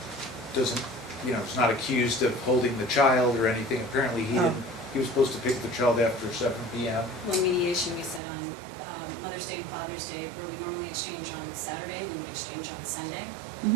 doesn't, you know, is not accused of holding the child or anything. Apparently he didn't, he was supposed to pick the child after 7 p.m. Well, mediation, we said on Mother's Day and Father's Day, where we normally exchange on Saturday, we would exchange on Sunday.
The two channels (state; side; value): drops out; left; at 8.2 s